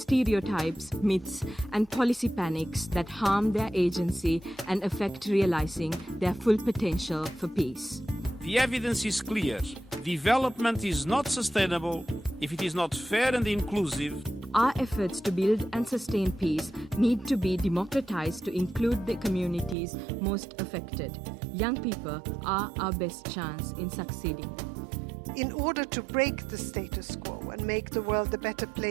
myths, and policy panics that harm their agency and affect realizing their full potential for peace. The evidence is clear. Development is not sustainable if it is not fair and inclusive. Our efforts to build and sustain peace need to be democratized to include the communities most affected. Young people are our best chance in succeeding. In order to break the status quo and make the world a better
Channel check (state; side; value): drops out; left; at 19.8 s